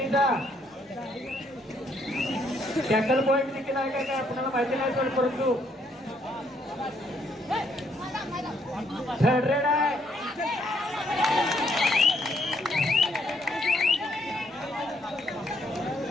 टॅकल पॉईंट देखील आहे काय आपल्याला माहिती नाही पण परंतु 100 आहे.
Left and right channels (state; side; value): normal; both; correlation 0.70